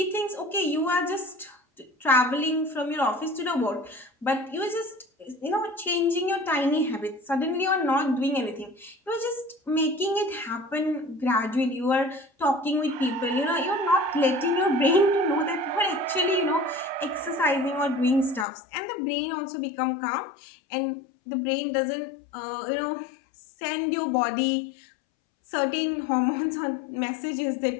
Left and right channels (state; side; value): drops out; right; at 18.4 s